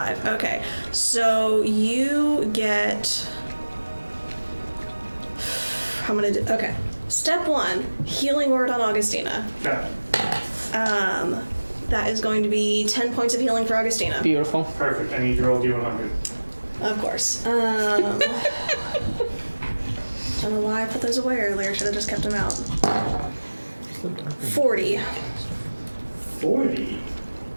Okay. So you get. I'm gonna do. Okay. Step 1, healing word on Augustina. Okay. That is going to be 10 points of healing for Augustina. Beautiful. Perfect. I need to roll D100. Of course. I don't know why I put those away earlier. Should have just kept them out. 40. 40.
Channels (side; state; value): both; inverted; correlation -1.00